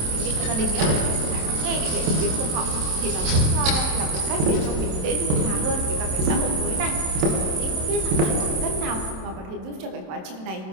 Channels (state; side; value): late; left; 27 ms